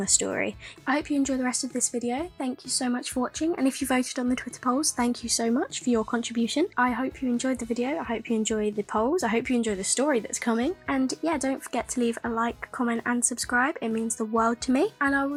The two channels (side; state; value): both; identical; correlation 1.00